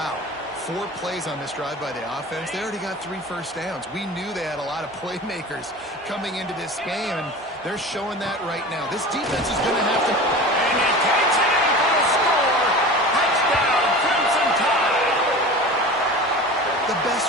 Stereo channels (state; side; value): normal; both; correlation 0.35